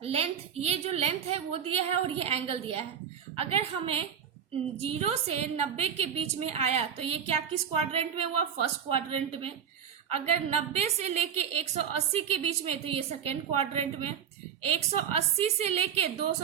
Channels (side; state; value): left; quieter; 8.1 dB